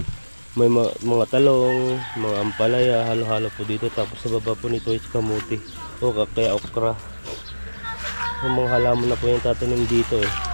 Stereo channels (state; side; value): inverted; both; correlation -1.00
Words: May mga talong, mga ampalaya, halo-halo po dito. Tapos sa baba po nito is kamuti o kaya okra. Yung mga halaman na po yung tatanim dito